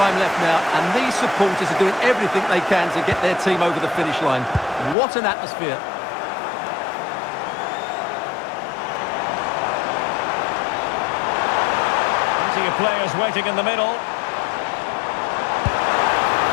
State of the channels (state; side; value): drops out; right; at 5.0 s